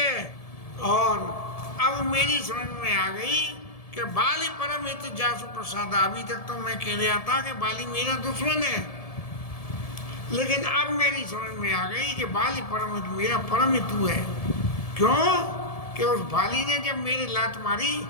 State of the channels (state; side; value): late; right; 1.7 ms